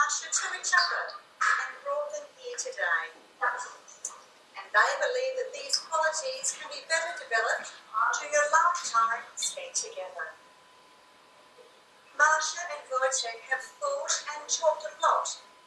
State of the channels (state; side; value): identical; both; correlation 1.00